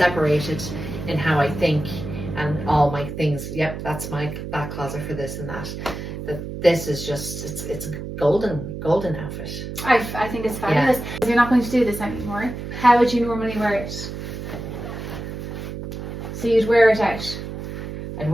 in how I think and all my things. Yep, that's my back closet for this and that. But this is just, it's a golden outfit. I think it's fabulous. You're not going to do this anymore. How would you normally wear it? So you'd wear it out. I'd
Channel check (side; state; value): right; noise; hum, 8 dB below the sound